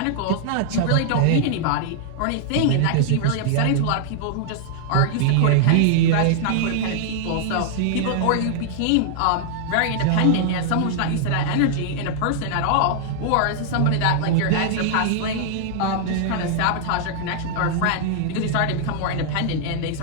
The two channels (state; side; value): different; both; correlation -0.01